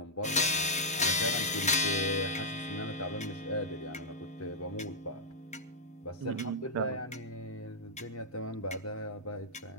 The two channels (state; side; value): normal; both; correlation -0.07